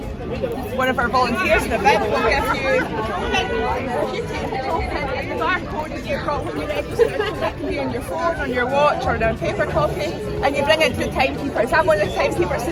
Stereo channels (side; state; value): both; identical; correlation 1.00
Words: one of our volunteers in the event, will give you, if you take the token and the barcode that you've got when you register, that can be on your phone, on your watch, or on a paper copy, and you bring it to the timekeepers. I'm one of the timekeepers